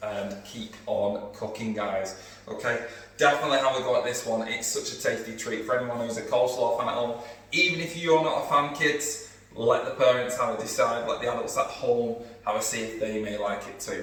and keep on cooking, guys, okay? Definitely have a go at this one. It's such a tasty treat for anyone who's a coleslaw fan at home. Even if you're not a fan, kids, let the parents have a decide, let the adults at home have a see if they may like it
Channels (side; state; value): both; identical; correlation 1.00